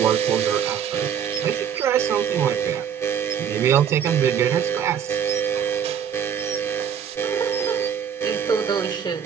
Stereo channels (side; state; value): left; quieter; 8.3 dB